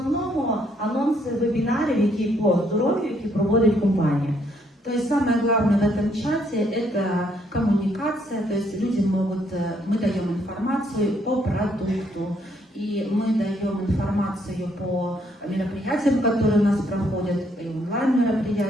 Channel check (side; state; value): both; normal; correlation 0.70